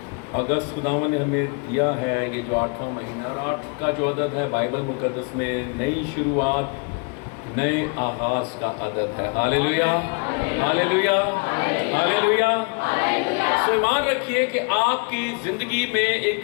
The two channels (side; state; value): right; quieter; 33.2 dB